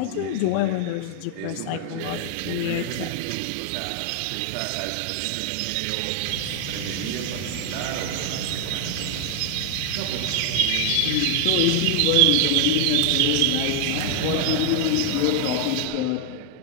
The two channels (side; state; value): both; different; correlation 0.00